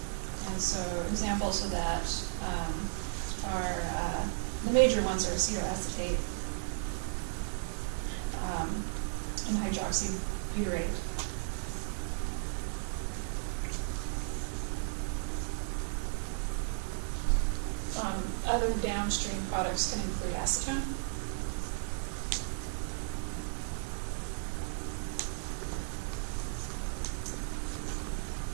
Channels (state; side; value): silent; left; digital silence